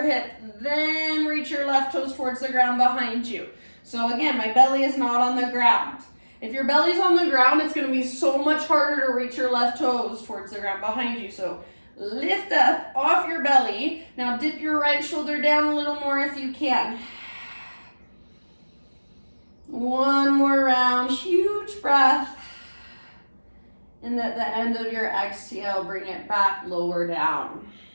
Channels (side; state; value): both; inverted; correlation -1.00